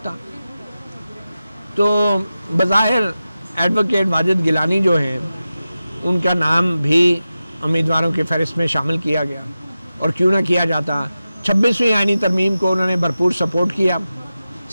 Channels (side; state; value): both; inverted; correlation -0.93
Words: تو بظاہر ایڈوکیٹ واجد گیلانی جو ہیں ان کا نام بھی امیدواروں کی فہرست میں شامل کیا گیا. اور کیوں نہ کیا جاتا, 26ویں آئینی ترمیم کو انہوں نے بھرپور سپورٹ کیا,